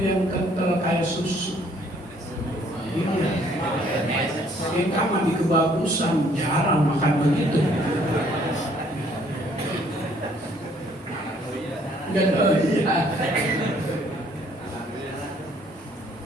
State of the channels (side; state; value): both; normal; correlation 0.62